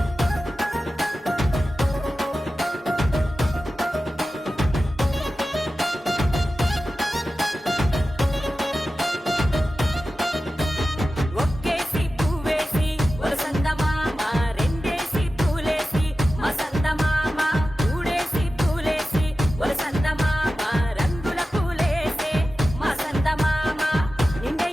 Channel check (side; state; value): both; normal; correlation 0.94